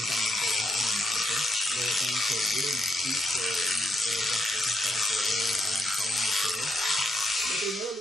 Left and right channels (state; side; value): normal; both; correlation 0.81